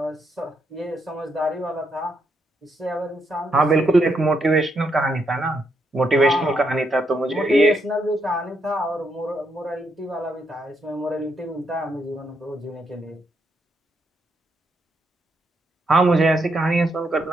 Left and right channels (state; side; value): normal; both; correlation 0.78